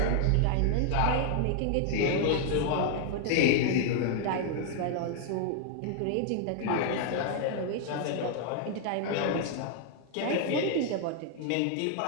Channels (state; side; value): different; both; correlation 0.00